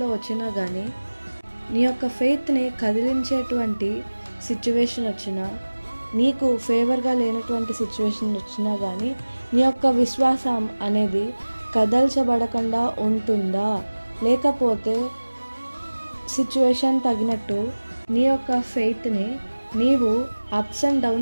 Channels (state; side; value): inverted; both; correlation -1.00